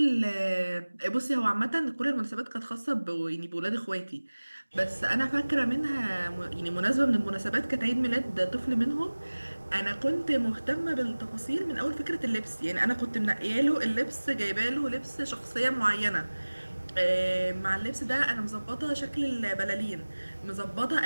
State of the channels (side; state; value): both; inverted; correlation -1.00